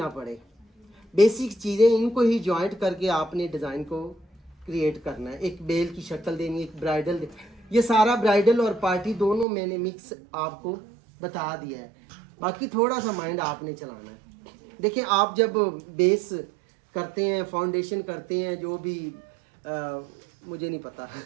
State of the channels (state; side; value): drops out; left; at 9.5 s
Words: पड़े। बेसिक चीज़ें इनको ही जॉइंट करके आपने डिज़ाइन को क्रिएट करना है। एक बेल की शक्ल देनी, एक ब्राइडल ये सारा ब्राइडल और पार्टी दोनों मैंने मिक्स आपको बता दिया है। बाकी थोड़ा सा माइंड आपने चलाना है। देखिए, आप जब बेस करते हैं, फाउंडेशन करते हैं, जो भी मुझे नहीं पता